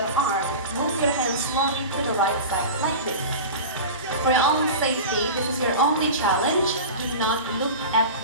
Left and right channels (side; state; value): both; inverted; correlation -0.30